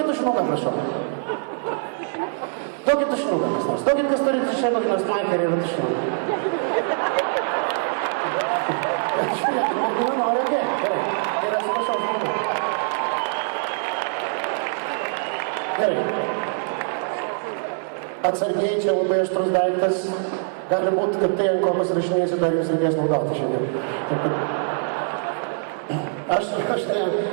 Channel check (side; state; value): left; silent; 63 dB below the other